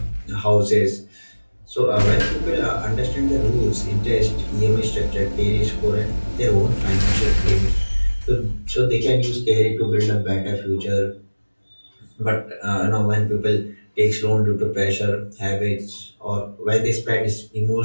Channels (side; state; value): both; inverted; correlation -1.00